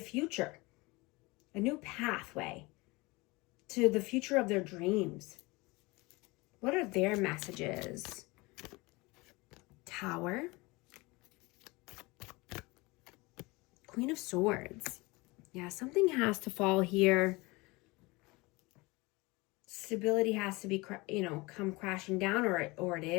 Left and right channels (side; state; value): right; quieter; 24.1 dB